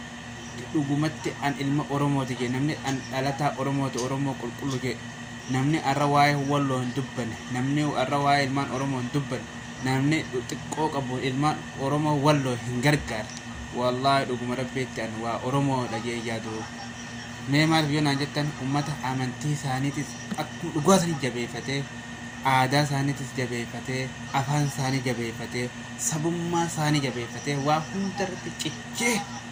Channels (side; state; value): both; identical; correlation 1.00